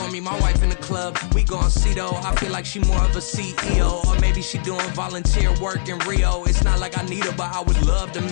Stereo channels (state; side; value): silent; right; 66 dB below the other